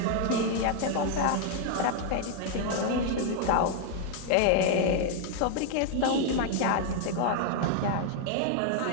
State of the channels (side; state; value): both; different; correlation 0.00